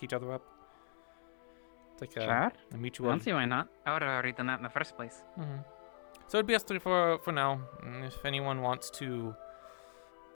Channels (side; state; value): right; silent; digital silence